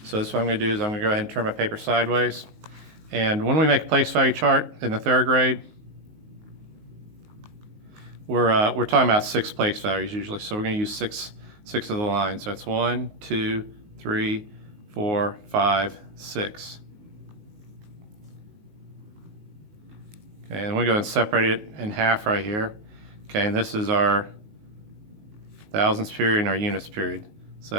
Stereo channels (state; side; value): late; left; 19 ms